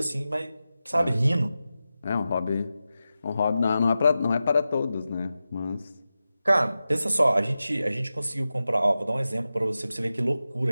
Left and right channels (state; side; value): inverted; both; correlation -0.93